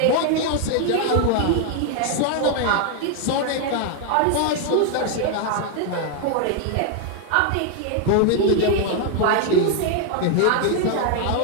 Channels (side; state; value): both; different; correlation 0.00